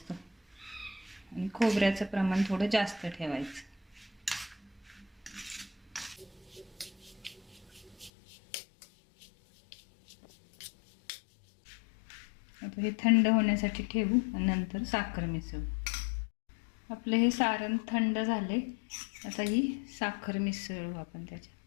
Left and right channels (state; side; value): drops out; right; at 8.1 s